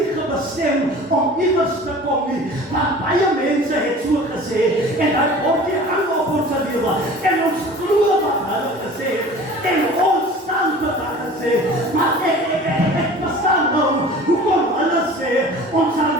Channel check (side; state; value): both; normal; correlation 0.42